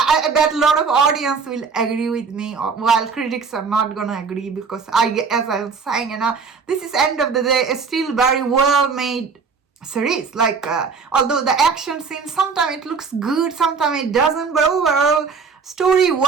I bet a lot of audience will agree with me, while critics are not gonna agree, because as I was saying, this is end of the day, it's still very well made series. Like, although the action scene, sometimes it looks good, sometimes it doesn't, but overall, story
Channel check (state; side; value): quieter; left; 5.3 dB